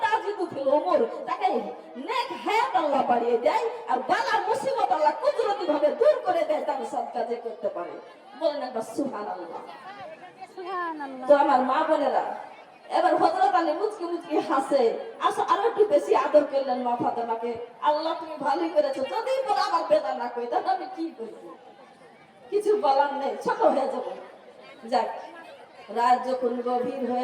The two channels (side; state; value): both; identical; correlation 1.00